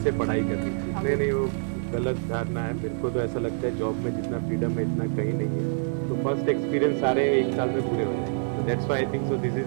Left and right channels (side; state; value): left; silent; 61 dB below the other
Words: पढ़ाई करनी चाहिए। नहीं, वो गलत धारणा है। मेरे को तो ऐसा लगता है जॉब में जितना फ्रीडम है इतना कहीं नहीं है। तो फर्स्ट एक्सपीरियंस सारे एक साल में पूरे हो जाएंगे। तो that's why I think so this